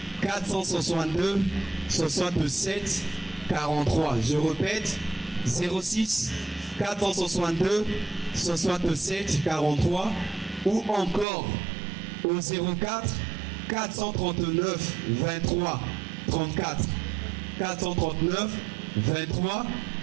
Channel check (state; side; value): drops out; left; at 11.2 s